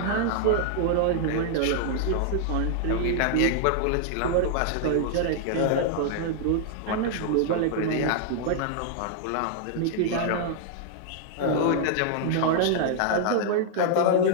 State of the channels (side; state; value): both; different; correlation -0.01